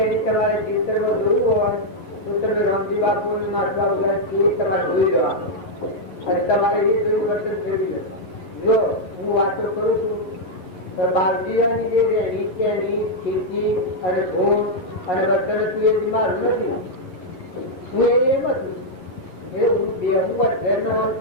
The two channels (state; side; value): late; right; 11 ms